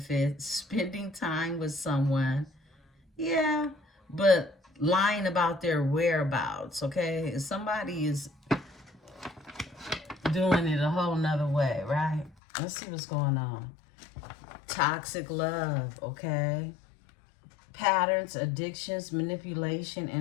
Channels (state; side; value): drops out; right; at 12.4 s